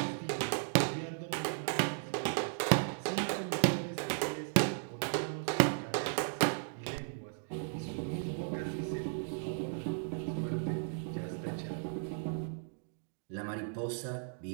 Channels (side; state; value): left; silent; digital silence